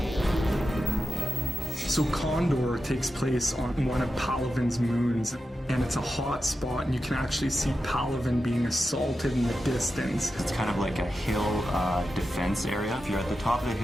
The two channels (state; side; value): normal; both; correlation 0.90